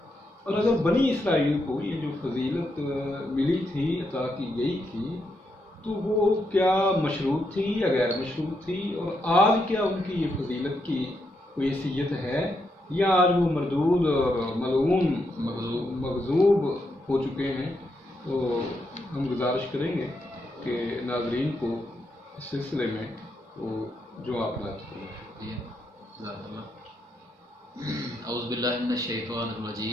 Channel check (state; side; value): normal; both; correlation 0.80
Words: اور اگر بنی اسرائیل کو یہ جو فضیلت ملی تھی، عطا کی گئی تھی، تو وہ کیا مشروط تھی یا غیر مشروط تھی، اور آج کیا ان کی یہ فضیلت کی کوئی حیثیت ہے یا آج وہ مردود اور ملعون مغضوب ہو چکے ہیں۔ تو ہم گزارش کریں گے کہ ناظرین کو اس سلسلے میں وہ جو آپ بات کریں۔ اعوذ باللہ من الشیطان